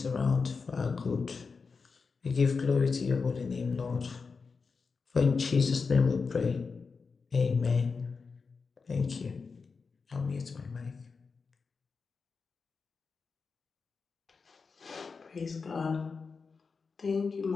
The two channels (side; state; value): right; quieter; 4.9 dB